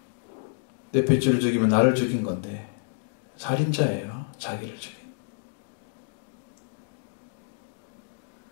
내 핏줄을 죽이면 나를 죽인 건데 살인자예요. 자기를 죽인.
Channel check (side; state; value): right; silent; digital silence